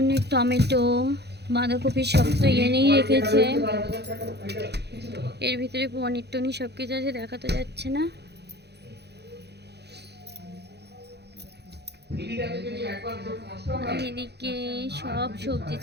টমেটো, বাঁধাকপি সব তো এনেই রেখেছে। এর ভিতরে পনির টনির সব কিছু আছে, দেখা তো যাচ্ছে না। আর এদিকে সব সবজি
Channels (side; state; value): left; late; 0.48 ms